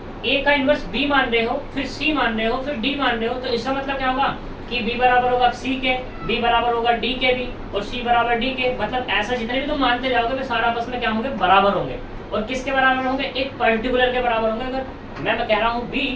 ए का इनवर्स बी मान रहे हो, फिर सी मान रहे हो, फिर डी मान रहे हो, तो इसका मतलब क्या होगा कि b बराबर होगा c के, b बराबर होगा d के भी, और c बराबर d के। मतलब ऐसा जितने भी तुम मानते जाओगे वे सारा आपस में क्या होंगे, बराबर होंगे। और किसके बराबर होंगे, एक पर्टिकुलर के बराबर होंगे। अगर मैं कह रहा हूँ b,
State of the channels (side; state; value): both; identical; correlation 1.00